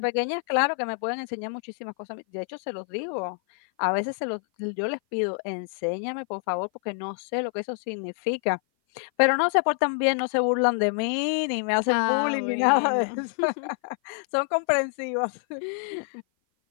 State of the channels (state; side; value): silent; right; 56 dB below the other